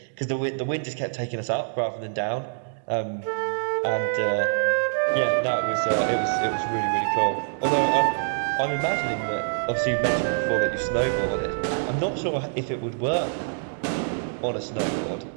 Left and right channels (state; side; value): silent; left; digital silence